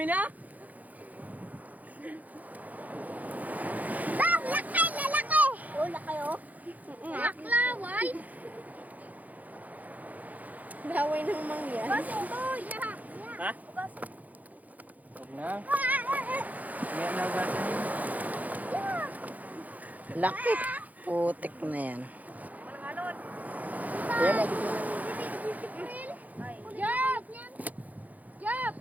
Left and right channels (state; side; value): late; left; 0.079 ms